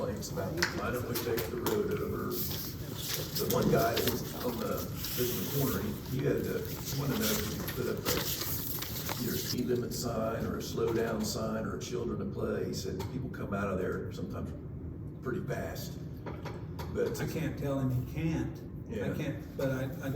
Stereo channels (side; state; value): both; identical; correlation 1.00